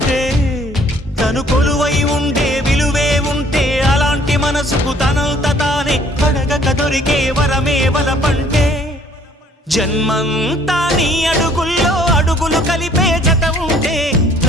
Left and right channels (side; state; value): both; normal; correlation 0.59